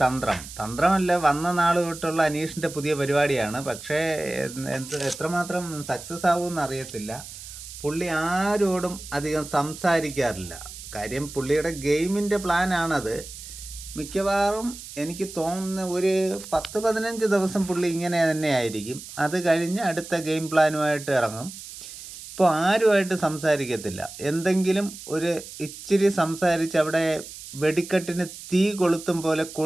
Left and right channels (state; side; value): noise; right; hiss, 13 dB below the sound